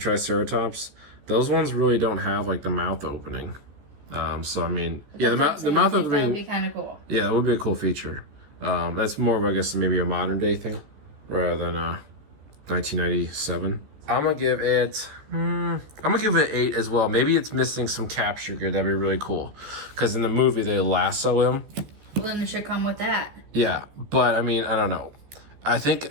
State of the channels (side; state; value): left; late; 14 ms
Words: those ones really don't have like the mouth opening. So I mean, yeah, the mouth opening. That would be kind of cool. Yeah, that would be a cool feature. That's more of, I guess, maybe a modern day thing rather than 1997. I'm gonna give it. I'm gonna give it 8 as well. Maybe it's missing some capture gear. That'd be really cool, because in the movie they lasso him. Well, then it should come with that. Yeah, but I mean, I don't know. I